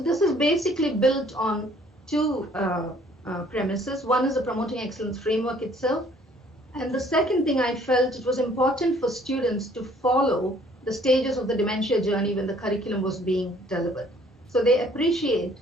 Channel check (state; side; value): normal; both; correlation 0.59